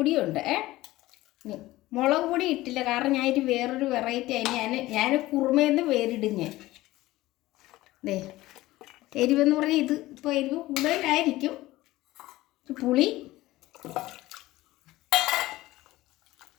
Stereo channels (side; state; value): right; quieter; 17.5 dB